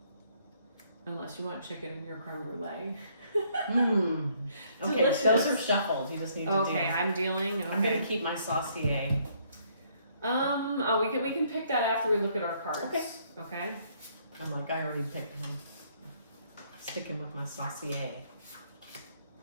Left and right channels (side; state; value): both; inverted; correlation -0.67